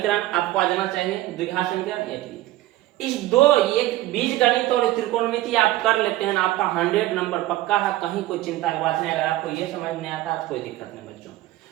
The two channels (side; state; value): left; quieter; 16.2 dB